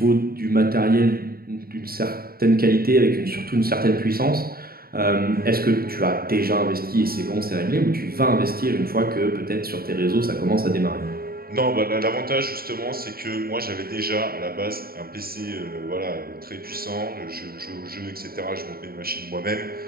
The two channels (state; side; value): late; left; 0.44 ms